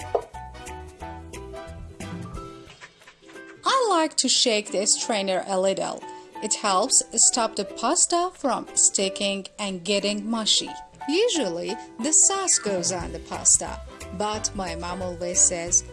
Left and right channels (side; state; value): both; identical; correlation 1.00